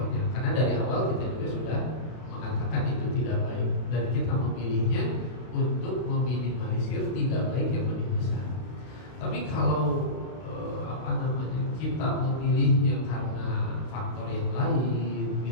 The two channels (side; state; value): right; late; 32 ms